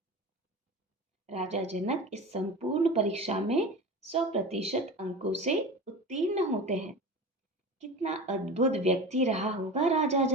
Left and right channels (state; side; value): normal; both; correlation 0.31